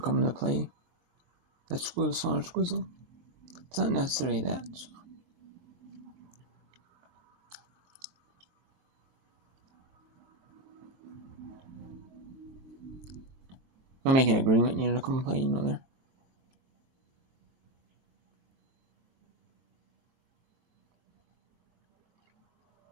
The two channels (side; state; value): left; late; 23 ms